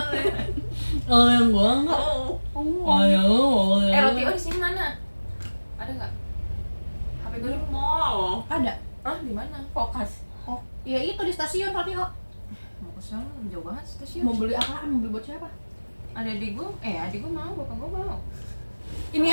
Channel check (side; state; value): both; inverted; correlation -1.00